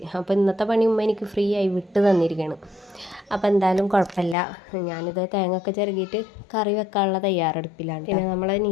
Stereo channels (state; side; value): drops out; right; at 4.4 s